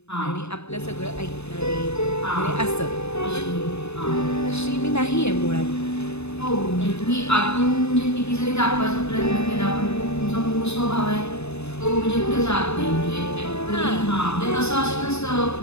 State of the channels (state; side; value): late; right; 0.80 ms